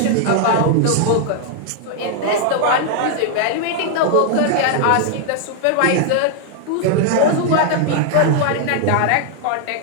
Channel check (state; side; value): different; both; correlation 0.00